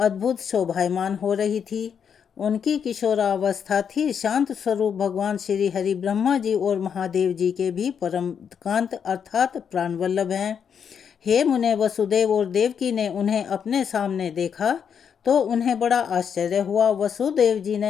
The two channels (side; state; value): right; quieter; 7.4 dB